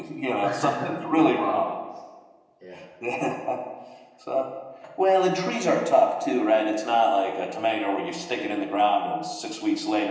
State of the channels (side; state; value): both; identical; correlation 1.00